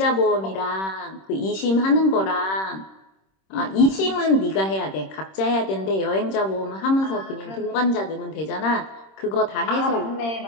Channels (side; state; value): right; late; 26 ms